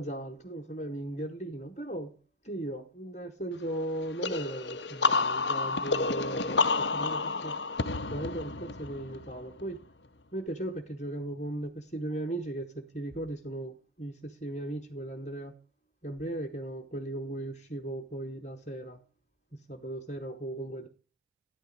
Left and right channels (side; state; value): both; normal; correlation -0.08